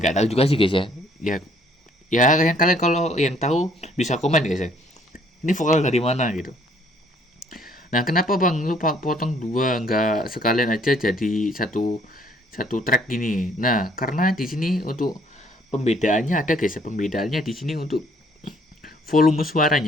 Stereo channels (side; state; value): both; normal; correlation 0.62